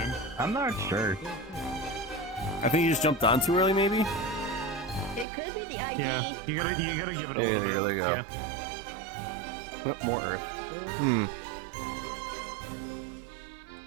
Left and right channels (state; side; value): drops out; left; at 5.2 s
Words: I'm not sure. I think you just jumped on too early, maybe? It could be the ID. Yeah, you gotta give it a There little bit. you go. Yep, more earth. Hmm.